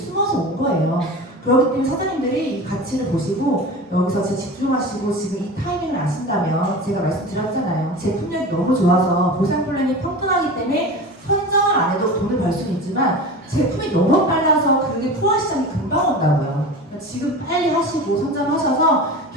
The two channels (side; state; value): both; normal; correlation 0.32